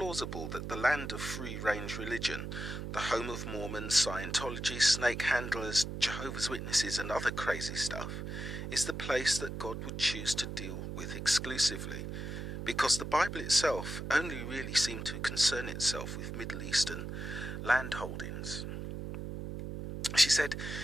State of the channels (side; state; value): right; noise; hum, 6 dB below the sound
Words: that the land of free-range religion, the home of Mormons, Scientology, snake handlers, Jehovah's Witnesses and other crazy stuff, is the place that God would choose to deal with exclusively? Because the Bible itself only really seemed to concern itself with Middle Eastern land holdings. She said,